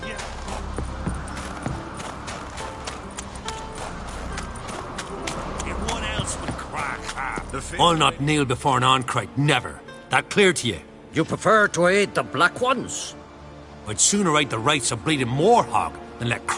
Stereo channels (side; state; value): both; identical; correlation 1.00